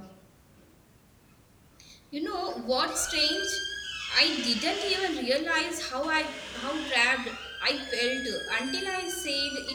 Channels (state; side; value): identical; both; correlation 1.00